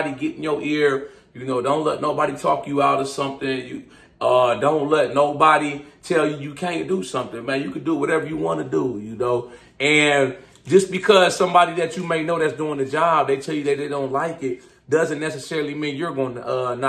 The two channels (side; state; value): both; identical; correlation 1.00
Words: get in your ear. You know, don't let nobody talk you out of something. Don't let nobody tell you can't do something, man. You can do whatever you want to do, you know. And just because somebody that you may know that's doing the job, they tell you that they don't like it, doesn't necessarily mean you're going to